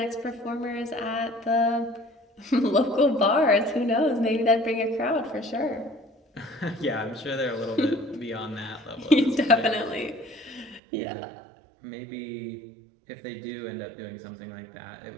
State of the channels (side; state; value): left; drops out; at 10.8 s